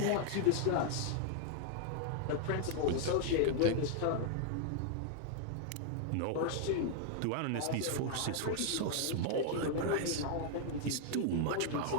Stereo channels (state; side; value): different; both; correlation 0.00